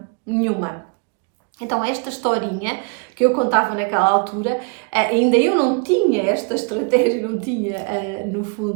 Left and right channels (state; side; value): quieter; left; 35.9 dB